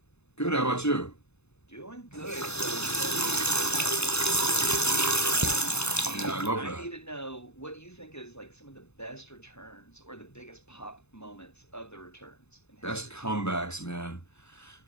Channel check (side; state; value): right; late; 0.80 ms